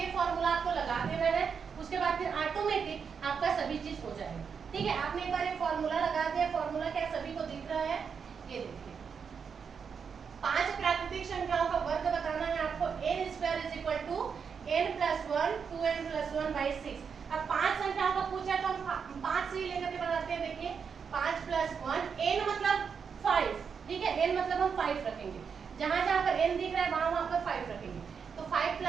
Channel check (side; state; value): left; quieter; 6.3 dB